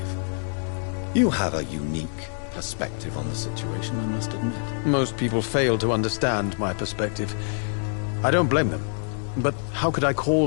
You have a unique perspective on the situation, I must admit. Most people fail to understand my perspective. I don't blame them. But how could I call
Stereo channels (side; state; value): right; silent; 61 dB below the other